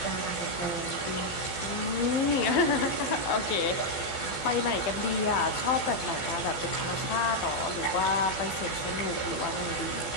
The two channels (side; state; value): right; late; 12 ms